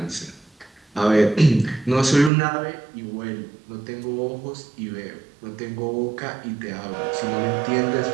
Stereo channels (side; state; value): left; drops out; at 2.3 s